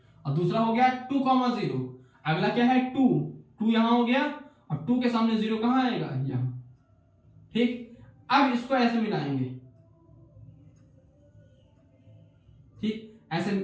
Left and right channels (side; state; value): both; identical; correlation 1.00